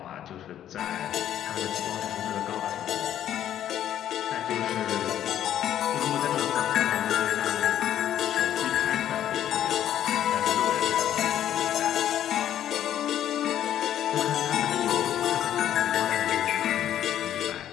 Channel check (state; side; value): quieter; right; 11.0 dB